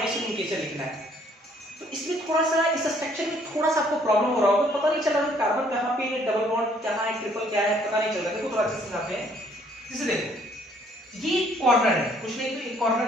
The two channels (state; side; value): normal; both; correlation 0.63